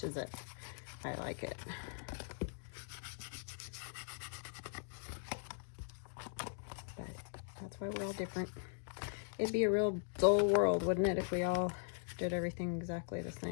it. I like it. But that's why we're all different. It'd be a real dull world, wouldn't it, if we all did everything exactly the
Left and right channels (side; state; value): right; silent; digital silence